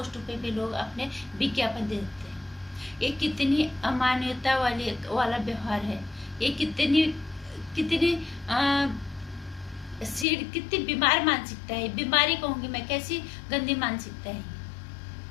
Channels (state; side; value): drops out; right; at 10.2 s